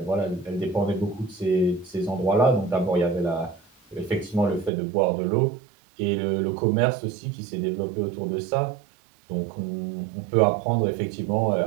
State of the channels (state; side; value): drops out; left; at 4.7 s